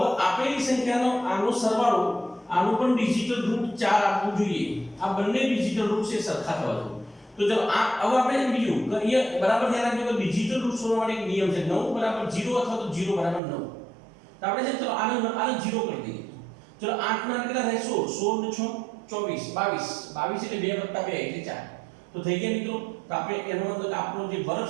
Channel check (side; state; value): left; drops out; at 13.4 s